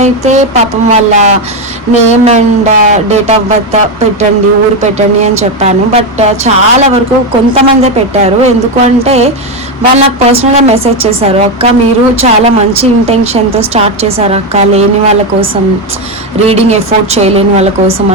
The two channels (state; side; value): normal; both; correlation 0.09